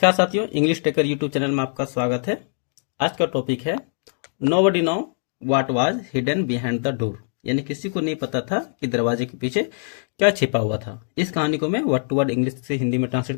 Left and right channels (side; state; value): right; silent; digital silence